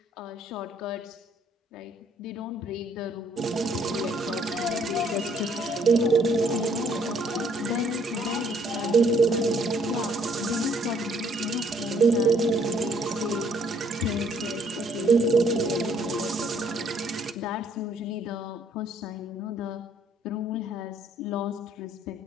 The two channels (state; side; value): normal; both; correlation 0.65